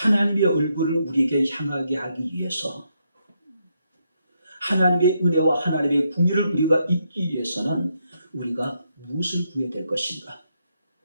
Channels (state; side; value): inverted; both; correlation -0.79